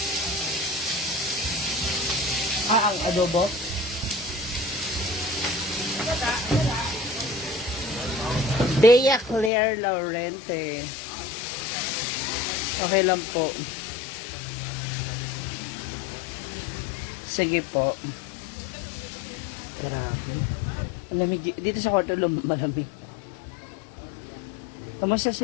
Ang adobo? Bea Claire Laurente. Okay lang po. Sige po. Grabe. Malamig dito sa kwarto, malamig. Kamusta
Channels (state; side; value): drops out; right; at 9.5 s